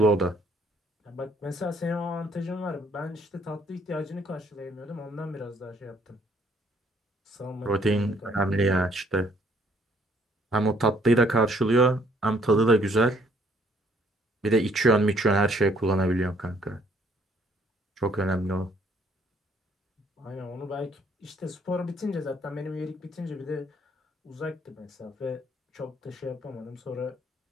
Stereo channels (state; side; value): normal; both; correlation 0.65